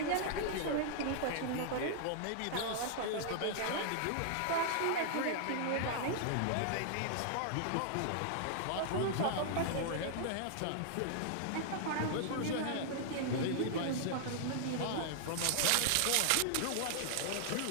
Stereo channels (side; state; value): both; different; correlation -0.01